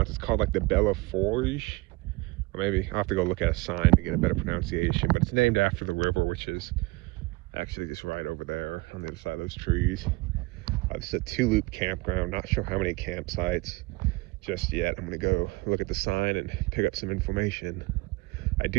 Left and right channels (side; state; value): left; quieter; 23.8 dB